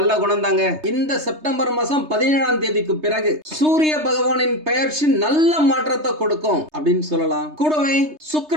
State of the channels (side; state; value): left; late; 3.3 ms